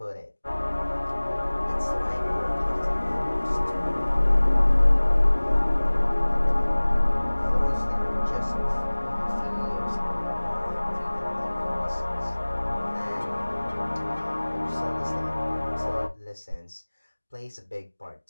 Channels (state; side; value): inverted; both; correlation -1.00